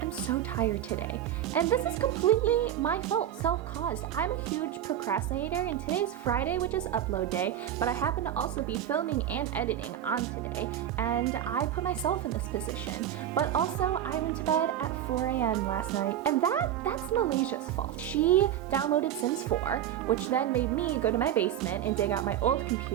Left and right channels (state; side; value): quieter; left; 10.8 dB